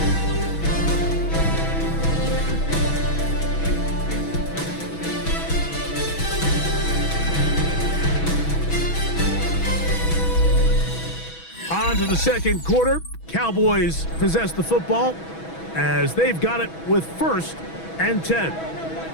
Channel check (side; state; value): right; late; 6.2 ms